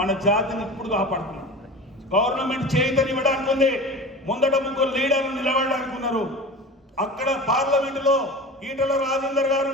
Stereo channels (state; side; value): normal; both; correlation 0.34